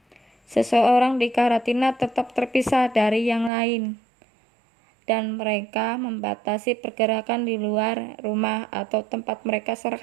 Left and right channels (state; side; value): drops out; left; at 3.5 s